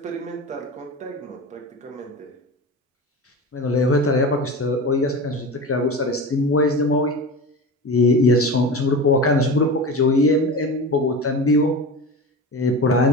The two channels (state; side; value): normal; both; correlation 0.29